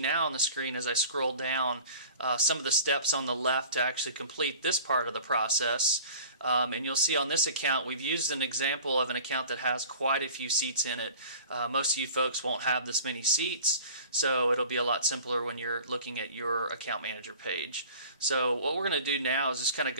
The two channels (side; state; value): both; inverted; correlation -0.44